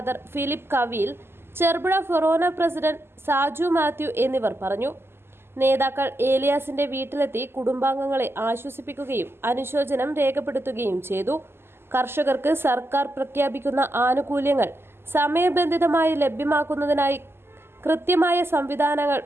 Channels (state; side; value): late; left; 0.12 ms